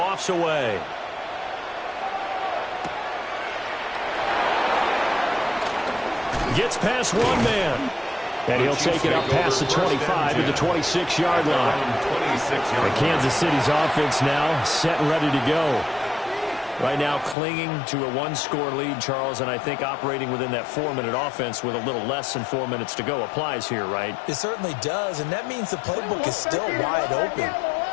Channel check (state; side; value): drops out; right; at 17.4 s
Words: away. Gets past one man. And he'll take it up past the 25 to the 26-yard line. And Kansas City's offense now set and ready to go. Right now clinging to a 1-score lead, Charles, and I think operating within that 4-minute offense with a little less than 4 minutes to go applies here, right? It certainly does, and that means the playbook is still wide open.